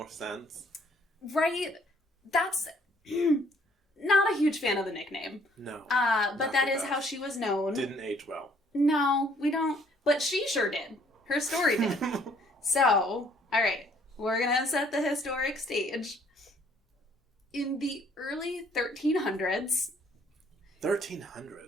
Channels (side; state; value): both; normal; correlation 0.62